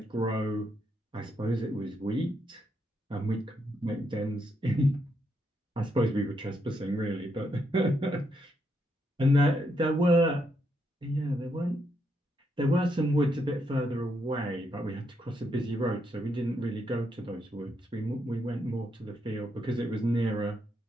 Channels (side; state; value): both; normal; correlation 0.78